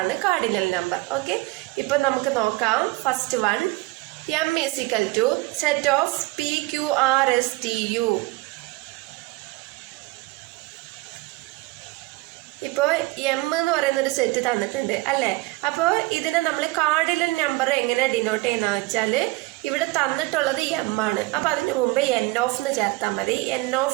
കാർഡിനൽ നമ്പർ. ഓക്കെ, ഇപ്പൊ നമുക്ക് നോക്കാം. First one, M is equal to set of P, Q, R, S, T, U. ഇപ്പോൾ എം എന്ന് പറയുന്ന ഒരു സെറ്റ് തന്നിട്ടുണ്ട് അല്ലേ? അപ്പോൾ ഇതിനെ നമ്മൾ കാർഡിനൽ നമ്പർ എങ്ങനെ ഡിനോട്ട് ചെയ്യുന്നതെന്ന് വെച്ചാൽ ഇവിടെ തന്നിട്ടുള്ളത് എം ആണ്. അപ്പോൾ അതിന് മുമ്പ് എൻ ഓഫ് എന്ന് ചേർത്താൽ മതി. എൻ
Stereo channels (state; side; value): quieter; left; 21.8 dB